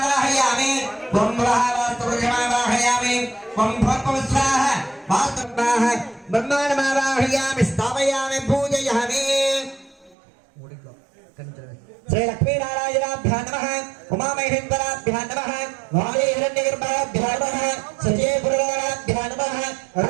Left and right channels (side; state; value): left; drops out; at 10.2 s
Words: ब्रह्मः वास्तुपुरुषमावाहयामि ब्रह्मोत्पवस्वाः वास्तुवाः ब्रह्माण्डमावाहयामि स्थापयामि पूजयामि श्री लक्ष्मी नारायणाभ्यां नमः उमामहेश्वराभ्यां नमः वायुहिरण्यगर्भाभ्यां नमः सजयपुरराभ्यां नमः